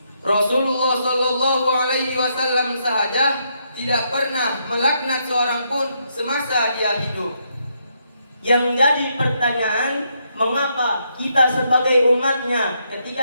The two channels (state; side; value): inverted; both; correlation -0.77